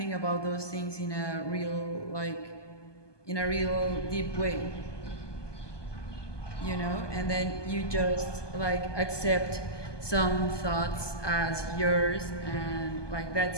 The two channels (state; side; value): late; right; 1.2 ms